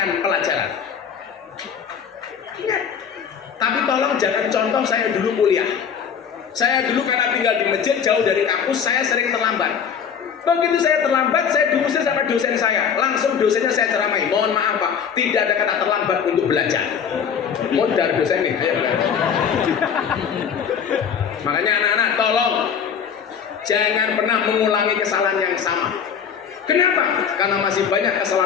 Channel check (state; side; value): quieter; right; 7.3 dB